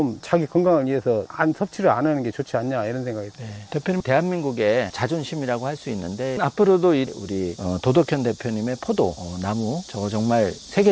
자기 건강을 위해서 섭취를 안 하는 게 좋지 않냐 이런 생각이 들어요. 대표님, 대한민국의 자존심이라고 할 수 있는데 앞으로도 우리 도덕현 대표님의 포도 나무 저거 정말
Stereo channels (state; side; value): identical; both; correlation 1.00